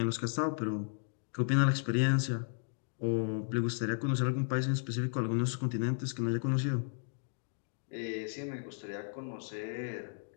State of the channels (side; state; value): right; silent; digital silence